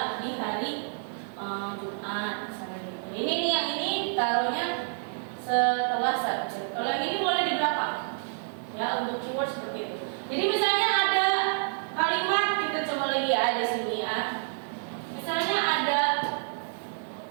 di hari Jumat misalnya gitu. Ini nih yang ini taruhnya setelah subjek. Kalau yang ini boleh di belakang ya, untuk keyword seperti itu. Jadi misalnya ada kalimat, kita coba lagi ya, ada sini ya. Misalnya ada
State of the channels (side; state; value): left; silent; digital silence